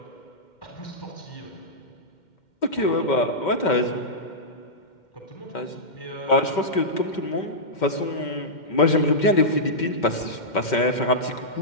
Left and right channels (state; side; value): late; right; 2.1 ms